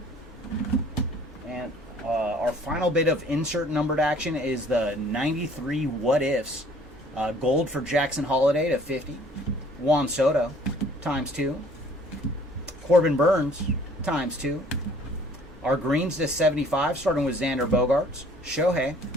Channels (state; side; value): normal; both; correlation 0.56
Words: And our final bit of insert numbered action is the 93 What Ifs. Gold for Jackson Holiday to 50. Juan Soto, ×2. Corbin Burns, ×2. Our greens to 75, starting with Xander Bogaerts, Shohei,